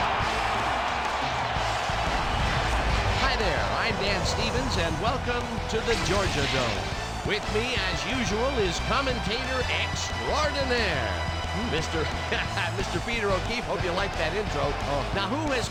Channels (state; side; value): identical; both; correlation 1.00